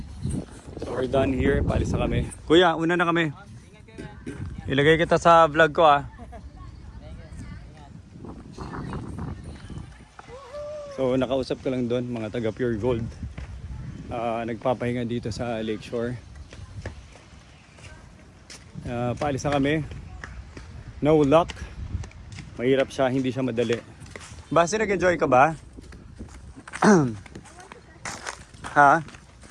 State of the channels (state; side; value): identical; both; correlation 1.00